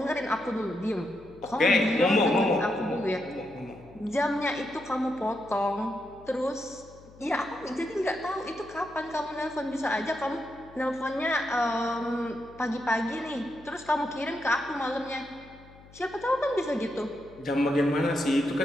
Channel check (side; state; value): left; noise; hum, 22 dB below the sound